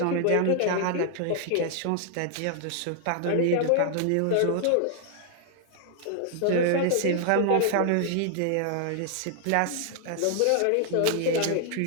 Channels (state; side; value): different; both; correlation 0.00